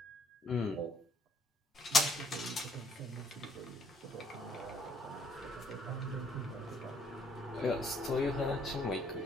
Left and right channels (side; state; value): both; normal; correlation 0.64